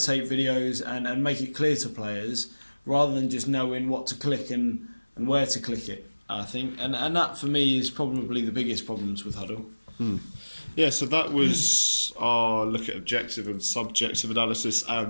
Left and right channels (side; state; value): both; inverted; correlation -1.00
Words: videos and make it clear to players, rather than just knowing what to click and where to click it, I think. And that for me is probably the biggest problems with Huddle. Yeah, so that was our look at objective and subjective analysis